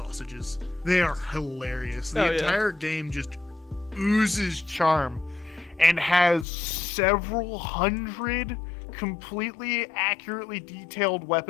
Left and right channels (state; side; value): drops out; right; at 6.5 s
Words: They are hilarious. The Oh, yeah. entire game just oozes charm and has several hundred completely accurately detailed